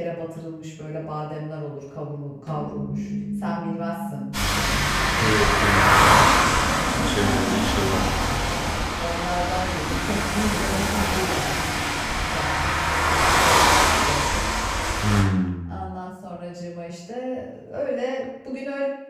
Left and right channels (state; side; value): identical; both; correlation 1.00